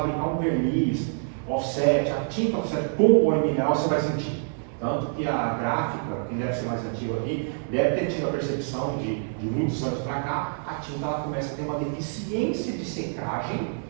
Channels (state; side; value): silent; left; digital silence